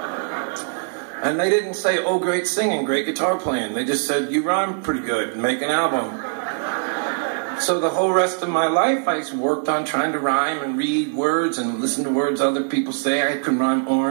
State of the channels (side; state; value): left; silent; 60 dB below the other